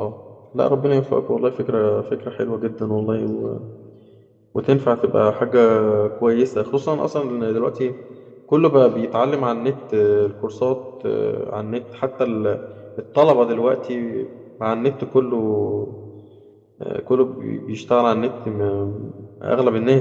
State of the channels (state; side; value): identical; both; correlation 1.00